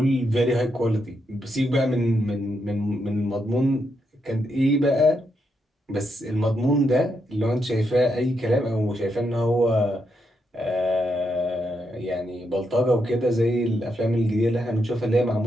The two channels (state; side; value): normal; both; correlation 0.81